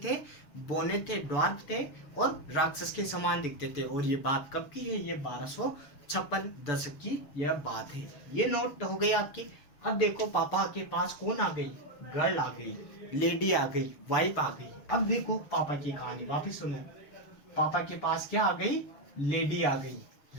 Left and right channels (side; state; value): right; late; 6.9 ms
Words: बोने थे, ड्वार्फ थे और राक्षस के समान दिखते थे। और ये बात कब की है? ये 1256 दशक की यह बात है। ये नोट हो गई आपकी। अब देखो पापा के पास कौन आ गई? गर्ल आ गई, लेडी आ गई, वाइफ आ गई। अब देखो पापा की कहानी वापिस सुनो। पापा के पास क्या आ गई? लेडी आ गई,